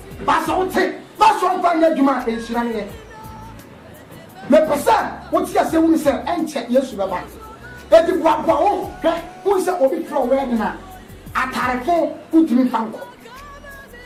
but I would say, that's one fine Yajuma is running. My person, what's your saying, sir, and check yes, Baba. Et the Guapo, who is a bit from Wedina. At Tarafo, put me Fanko.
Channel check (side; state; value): both; identical; correlation 1.00